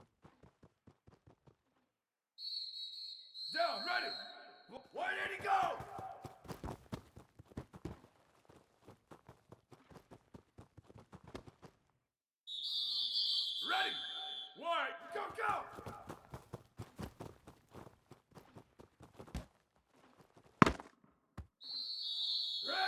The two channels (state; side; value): identical; both; correlation 1.00